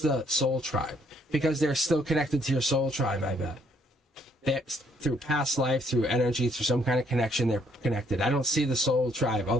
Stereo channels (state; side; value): normal; both; correlation 0.67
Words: soul tribe. Because they're still connected to your soul tribe, I bet. Through past life, through energy, through some kind of connection, they're connected. I don't see the soul tribe